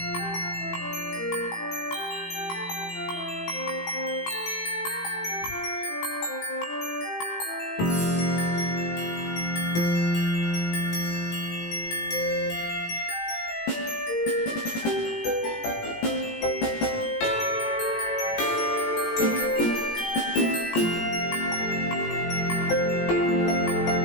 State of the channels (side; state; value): right; late; 18 ms